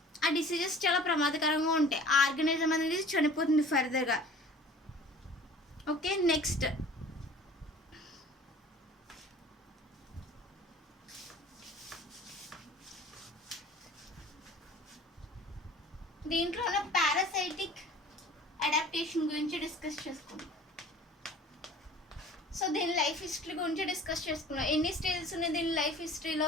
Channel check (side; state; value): both; normal; correlation 0.46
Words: ఆ డిసీజెస్ చాలా ప్రమాదకరంగా ఉంటాయి. ఆ ఆర్గానిజం అనేది చనిపోతుంది ఫర్దర్గా. ఓకే, నెక్స్ట్ దీంట్లో ఉన్న పారాసైటిక్ అడాప్టేషన్ గురించి డిస్కస్ చేసుకుందాం. సో దీని లైఫ్ హిస్టరీ గురించి డిస్కస్ చేసుకున్నాం. ఎన్ని స్టేజెస్ ఉన్నాయి దీని లైఫ్